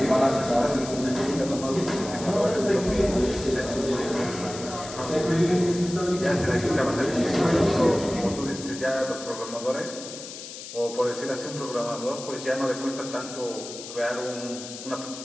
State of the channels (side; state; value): left; noise; hiss, 12 dB below the sound